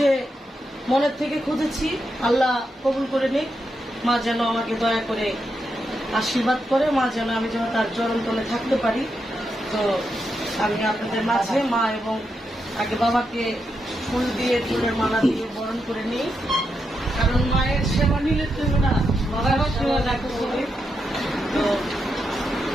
মনের থেকে খুঁজেছি, আল্লাহ কবুল করে নিক। মা যেন আমাকে দয়া করে আশীর্বাদ করে, মা যেন আমি যেন তার চরণ তলে থাকতে পারি। তো আমি আপনাদের মাঝে মা এবং আগে বাবাকে ফুল দিয়ে ফুলের মালা দিয়ে বরণ করে নিই, কারণ মায়ের সেবা নিলে তুমি না বাবার সেবা দেখো করে। তো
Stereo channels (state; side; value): normal; both; correlation 0.84